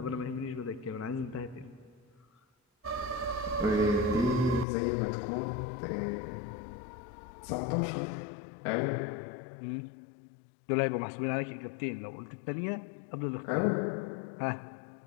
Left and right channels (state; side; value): drops out; right; at 4.7 s